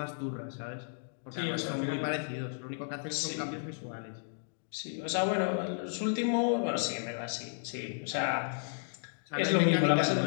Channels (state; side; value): silent; right; digital silence